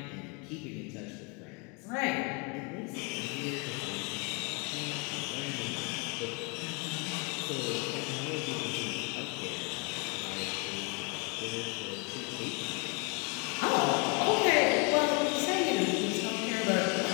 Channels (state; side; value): quieter; right; 31.6 dB